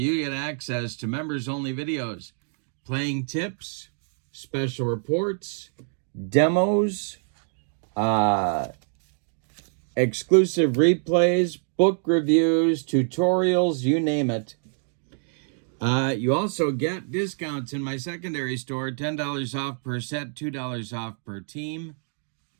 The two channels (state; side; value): silent; left; 57 dB below the other